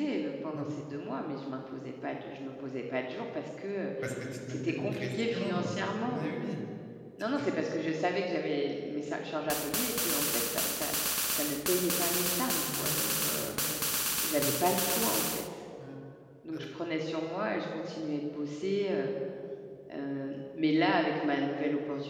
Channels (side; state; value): both; identical; correlation 1.00